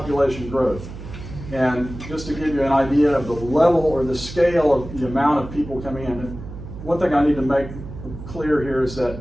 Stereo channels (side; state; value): right; noise; hum, 12 dB below the sound